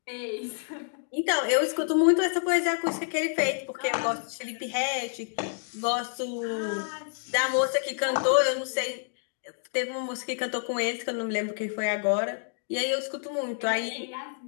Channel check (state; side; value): silent; right; digital silence